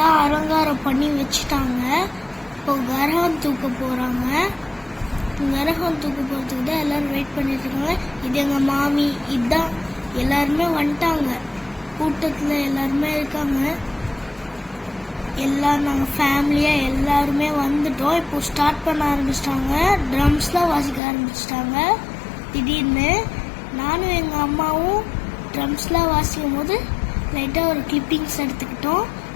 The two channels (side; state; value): right; drops out; at 21.0 s